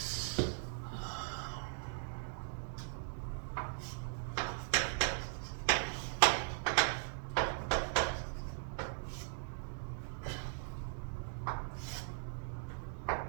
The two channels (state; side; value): silent; left; digital silence